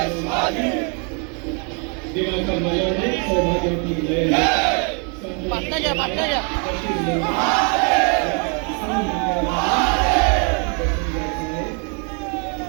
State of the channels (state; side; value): quieter; left; 36.8 dB